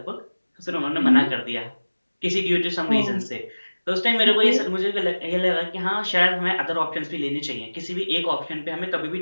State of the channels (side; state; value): both; inverted; correlation -1.00